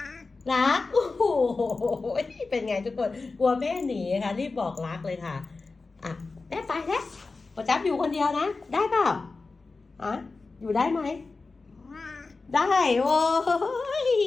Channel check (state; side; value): quieter; right; 3.9 dB